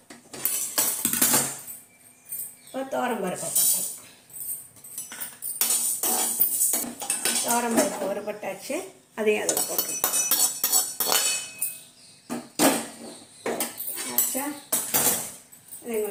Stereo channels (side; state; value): both; identical; correlation 1.00